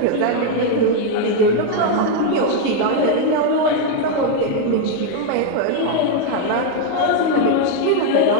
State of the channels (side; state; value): both; different; correlation 0.01